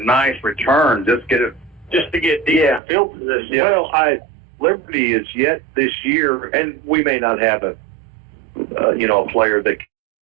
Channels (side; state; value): left; drops out; at 2.8 s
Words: return, just to get deep field position. Yeah. Well, Liberty is yet this year, and we may not have a player that